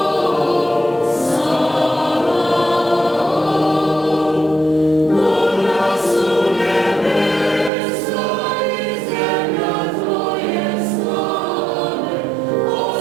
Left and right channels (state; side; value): drops out; left; at 7.7 s